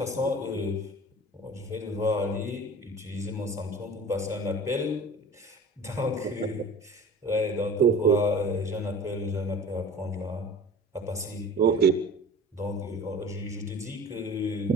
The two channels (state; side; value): normal; both; correlation 0.40